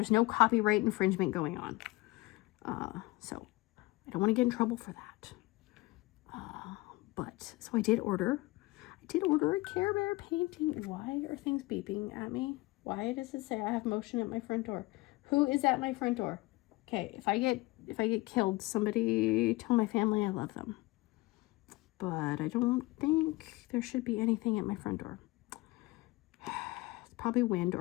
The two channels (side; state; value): right; quieter; 21.4 dB